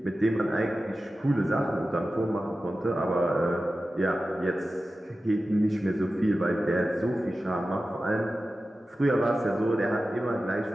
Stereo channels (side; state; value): both; normal; correlation 0.94